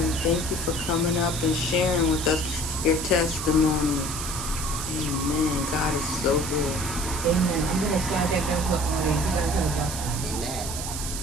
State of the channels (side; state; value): right; noise; hiss, 6 dB below the sound